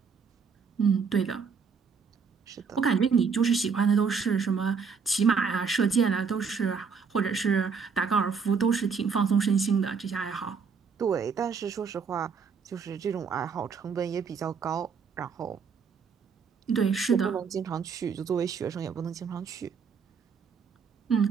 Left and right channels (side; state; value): left; quieter; 5.8 dB